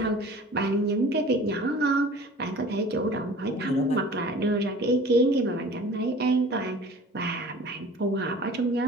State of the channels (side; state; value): both; normal; correlation 0.44